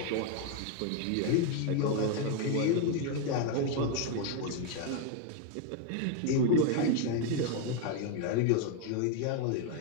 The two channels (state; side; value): different; both; correlation 0.01